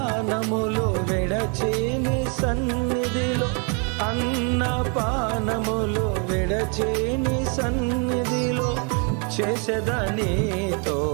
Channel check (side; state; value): left; quieter; 37.2 dB